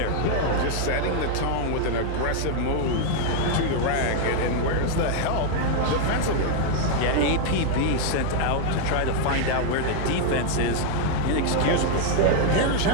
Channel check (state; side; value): different; both; correlation 0.00